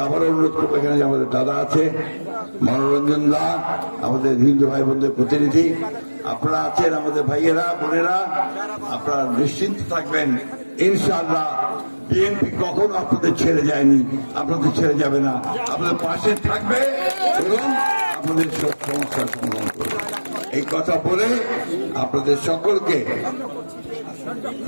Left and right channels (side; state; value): both; inverted; correlation -1.00